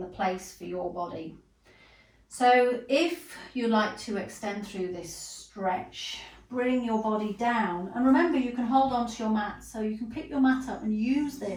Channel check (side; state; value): both; identical; correlation 1.00